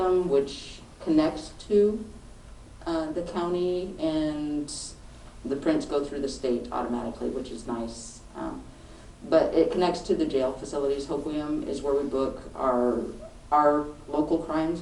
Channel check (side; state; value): both; identical; correlation 1.00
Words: which connects to the county, and the prints go through the state automatically, which is nice. But it connects to the jail facilities. Hoquiam is where we book our local crimes,